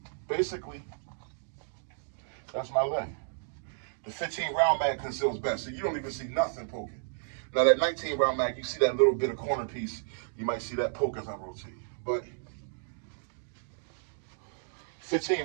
basically, that's my leg. The 15 round mag conceals best, so you don't even see nothing poking. Now that 19 round mag, you see that little bit of corner piece, you might see that poke as I rotate. But 15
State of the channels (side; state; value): left; silent; digital silence